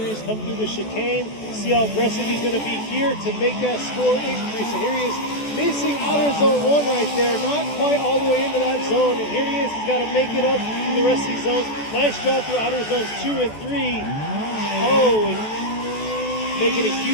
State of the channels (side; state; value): right; late; 14 ms